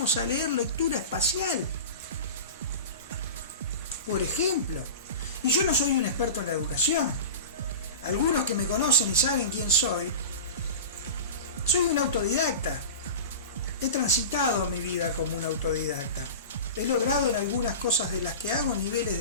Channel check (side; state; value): both; inverted; correlation -0.30